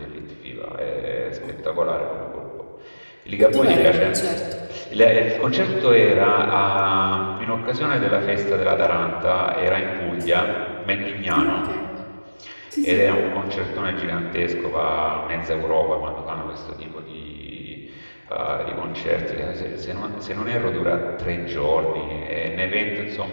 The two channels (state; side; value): inverted; both; correlation -1.00